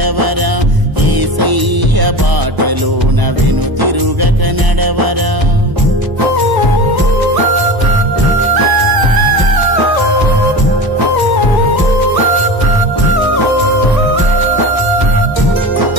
యేసయ్య బాటలోన వెనుతిరుగక నడవరా.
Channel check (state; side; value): late; left; 1.0 ms